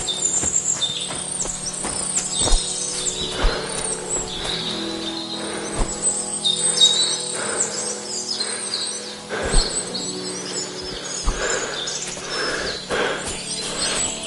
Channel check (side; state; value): both; identical; correlation 1.00